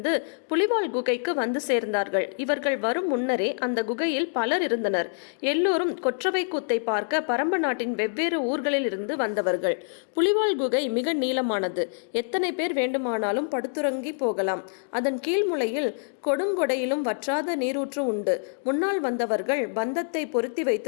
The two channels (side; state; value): right; silent; digital silence